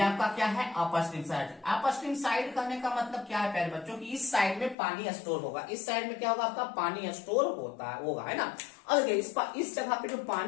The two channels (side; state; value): right; drops out; at 4.8 s